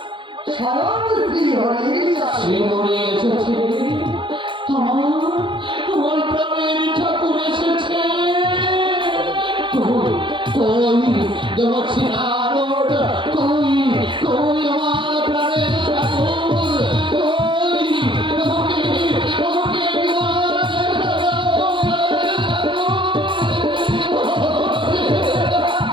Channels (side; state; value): left; late; 0.24 ms